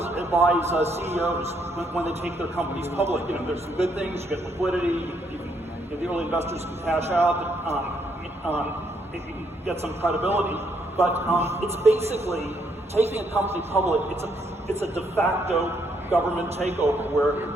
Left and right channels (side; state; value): both; normal; correlation 0.73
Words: advise CEOs when they take their companies public. There's some good things. You get liquidity. The early investors can cash out. You can get some credibility. But it's basically taking a company public. It's a de facto government takeover